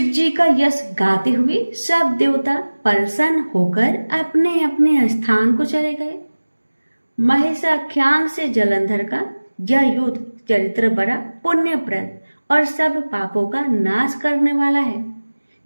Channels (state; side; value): inverted; both; correlation -1.00